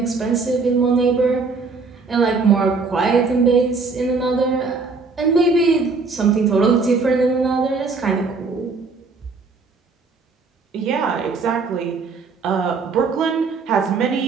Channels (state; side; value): quieter; left; 4.3 dB